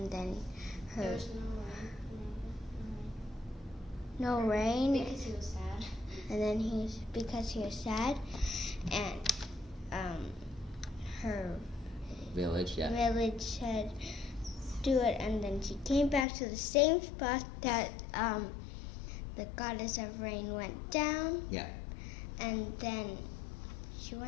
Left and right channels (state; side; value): drops out; right; at 16.2 s